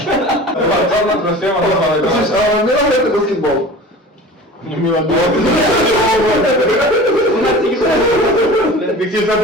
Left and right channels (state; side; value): normal; both; correlation 0.38